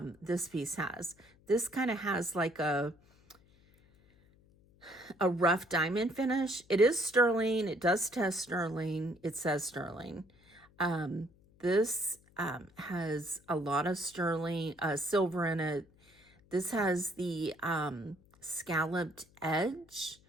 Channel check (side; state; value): left; noise; hum, 29 dB below the sound